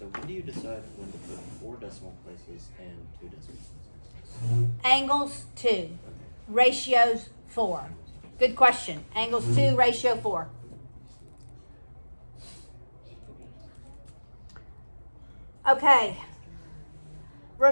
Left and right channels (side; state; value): both; inverted; correlation -1.00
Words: when do you decide when to put 4 decimal places and 2 decimal places? Angles 2, Okay. ratios 4. Good question. Angles 2, ratio 4. Okay.